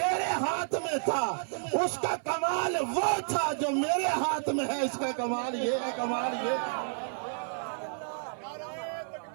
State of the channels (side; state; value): left; silent; 57 dB below the other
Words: ہاتھ میں تھا اس کا کمال وہ تھا جو میرے ہاتھ میں ہے، اس کا کمال یہ ہے، کمال یہ ہے۔